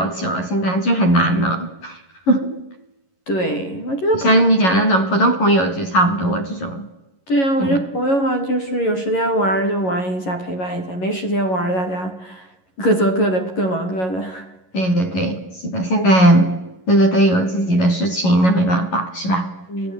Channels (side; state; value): right; late; 11 ms